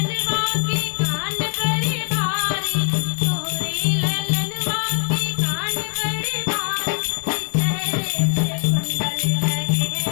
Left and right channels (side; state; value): right; silent; digital silence